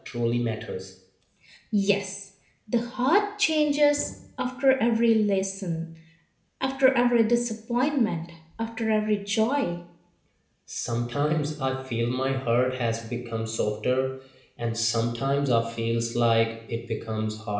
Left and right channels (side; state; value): both; identical; correlation 1.00